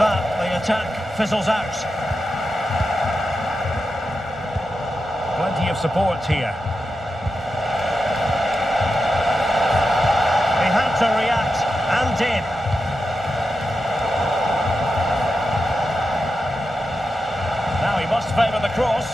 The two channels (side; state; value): both; normal; correlation 0.89